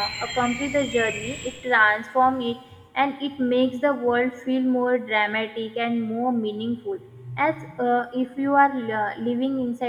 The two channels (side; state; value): both; identical; correlation 1.00